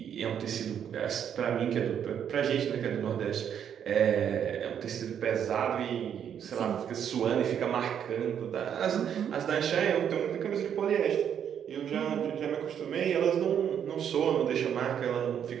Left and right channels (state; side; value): quieter; left; 8.7 dB